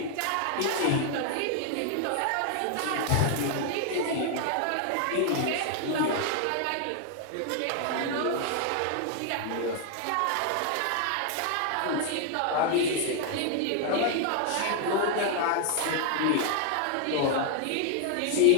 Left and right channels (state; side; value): different; both; correlation 0.00